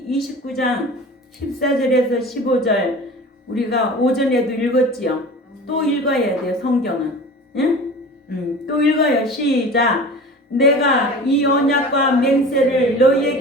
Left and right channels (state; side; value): normal; both; correlation 0.37